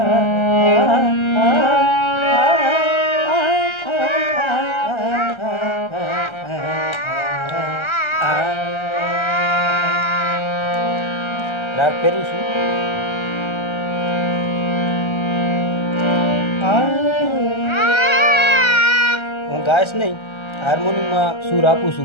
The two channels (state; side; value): late; right; 1.3 ms